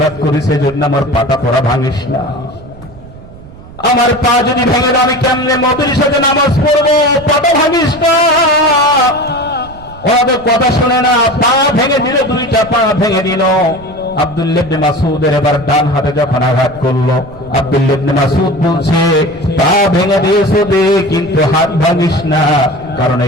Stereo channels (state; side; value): noise; right; rumble, 19 dB below the sound